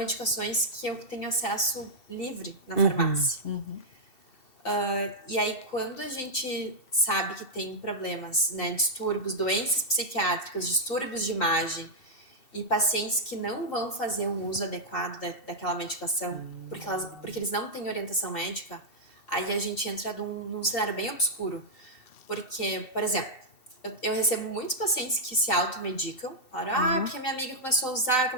que eu tenho acesso livre na farmácia. E aí, quando a gente sabe que tem problemas, né, distúrbios, doenças psiquiátricas, distúrbios de imagem, e pacientes que não vão fazer o uso adequado daquela medicação, porque eles não têm orientação médica, aí a gente entra num cenário bem obscuro. Porque, por exemplo, eu recebo muitos pacientes que se automedicam, falam, porque minha amiga começou a usar, eu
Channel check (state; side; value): late; right; 2.7 ms